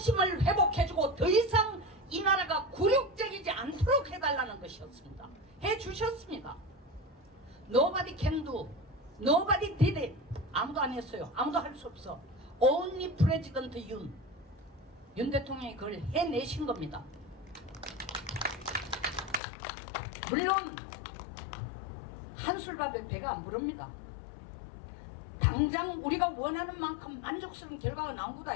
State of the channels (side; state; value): right; drops out; at 19.4 s